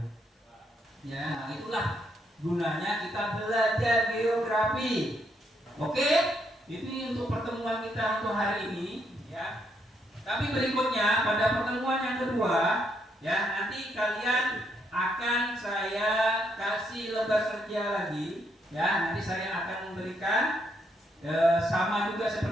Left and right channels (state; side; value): normal; both; correlation 0.75